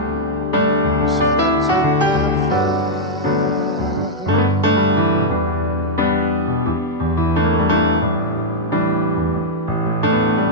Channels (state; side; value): normal; both; correlation -0.02